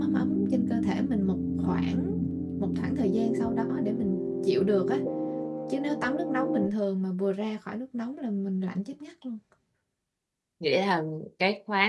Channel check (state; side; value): identical; both; correlation 1.00